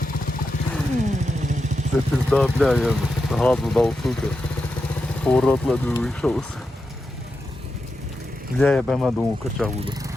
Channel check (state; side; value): normal; both; correlation 0.88